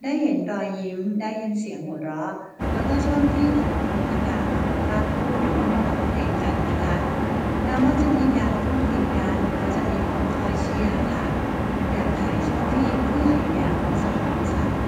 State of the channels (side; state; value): both; identical; correlation 1.00